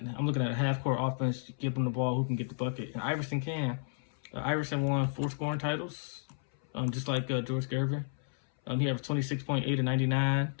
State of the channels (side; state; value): right; silent; 56 dB below the other